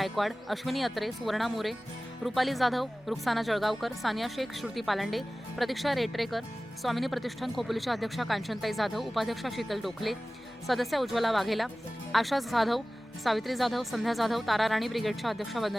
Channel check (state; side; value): normal; both; correlation 0.97